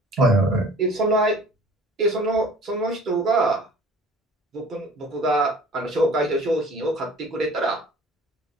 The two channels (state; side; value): normal; both; correlation 0.48